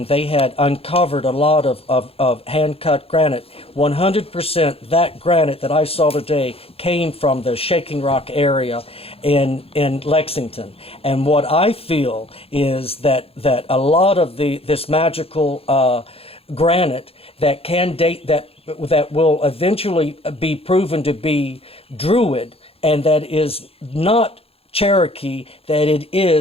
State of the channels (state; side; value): late; right; 0.28 ms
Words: they had uncovered a lot of hand-cut granite. 100% that granite that I saw today came from the shaking rock area in Lexington. And what I feel is that a lot of this magical granite that can date that will eventually be proven to be Druid, and that is not Cherokee, that it